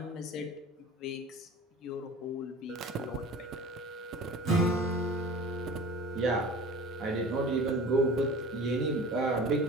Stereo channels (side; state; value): both; normal; correlation 0.39